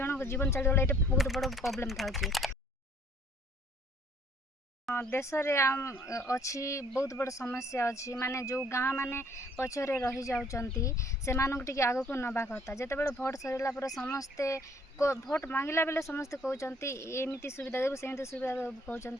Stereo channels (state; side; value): normal; both; correlation 0.60